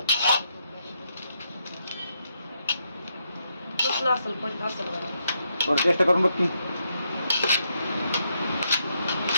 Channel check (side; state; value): both; inverted; correlation -0.79